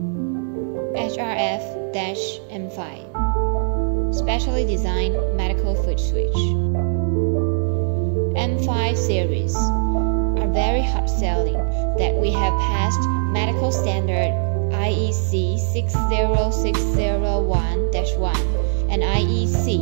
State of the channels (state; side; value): silent; left; 65 dB below the other